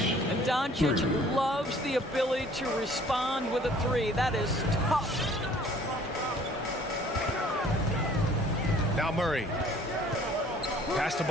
And Doncic loves the ability to respond with a 3. That is tough. Now Murray. Pass to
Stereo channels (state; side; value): normal; both; correlation 0.54